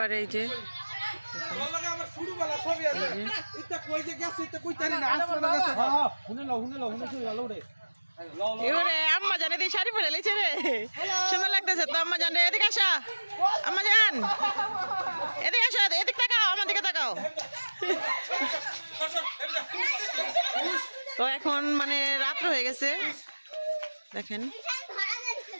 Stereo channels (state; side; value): inverted; both; correlation -1.00